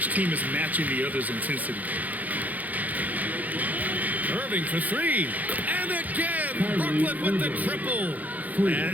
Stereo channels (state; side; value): late; left; 0.079 ms